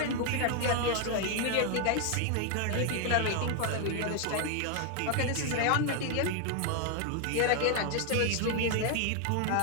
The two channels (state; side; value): different; both; correlation 0.00